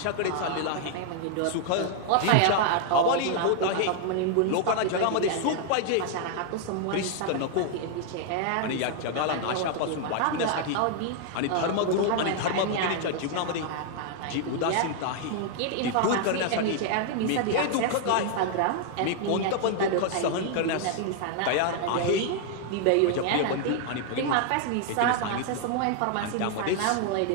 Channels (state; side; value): different; both; correlation 0.00